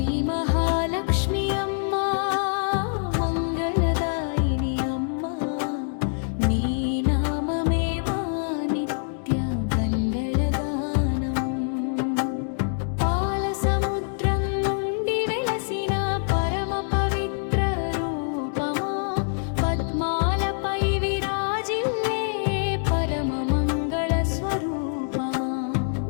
మహాలక్ష్మి అమ్మా మంగళదాయిని అమ్మా నీ నామమే మా నిత్య గంగళగానం పాల సముద్రం నుండి వెలసిన పరమ పవిత్ర రూపమా పద్మాలపై విరాజిల్లే పరమ మంగళ స్వరూపమా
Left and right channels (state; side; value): silent; right; digital silence